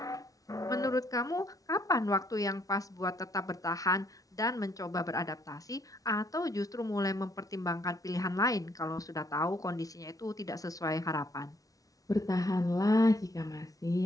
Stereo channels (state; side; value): late; right; 0.17 ms